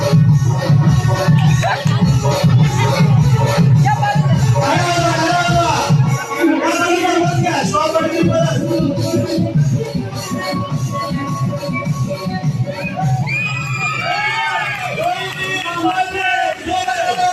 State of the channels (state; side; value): identical; both; correlation 1.00